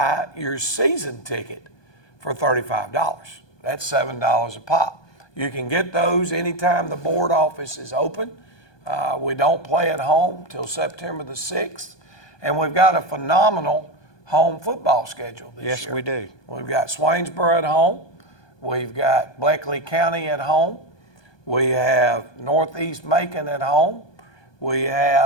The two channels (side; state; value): right; late; 1.2 ms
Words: your season ticket for $35. That's $7 a pop. You can get those anytime the board office is open. We don't play at home till September the 6th, and we've got a phenomenal home football schedule this year. Yes, we do. We've got Swainsboro at home. We've got Bleckley County at home. We have Northeast Macon at home. We